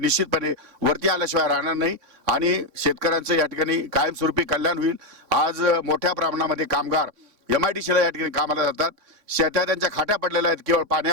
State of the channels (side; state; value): left; late; 3.5 ms